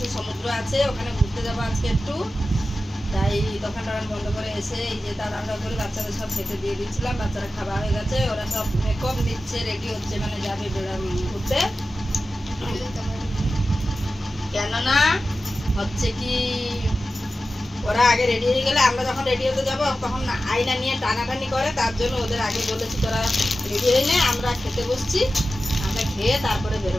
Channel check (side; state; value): both; normal; correlation 0.94